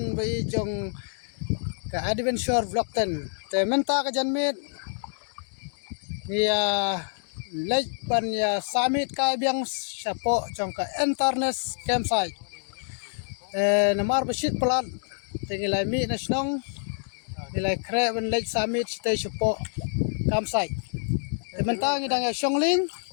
bi jong ke adventure vlog ten te menta ke janmit ya lej ban ya summit kai biang sapo jong ke internet campsite namar besit pelan tingilai mi nasionong nilai kre ban lej summit stay sapo campsite te menta ngidang ya shongling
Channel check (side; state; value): right; silent; 60 dB below the other